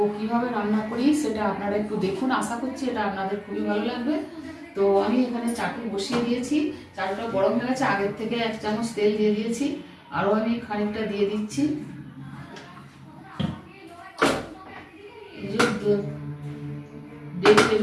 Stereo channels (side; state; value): both; identical; correlation 1.00